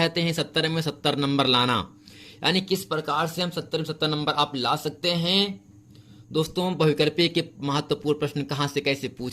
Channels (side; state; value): both; identical; correlation 1.00